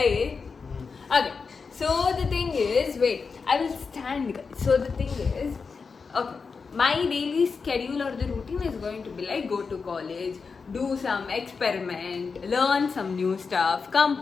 Okay. So the thing is, wait, I will stand, guys. So the thing is, okay, my daily schedule or the routine is going to be like go to college, do some experiment, learn some new stuff, come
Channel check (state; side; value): quieter; right; 5.1 dB